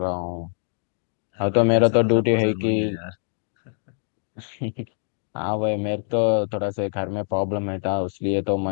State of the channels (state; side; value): silent; right; digital silence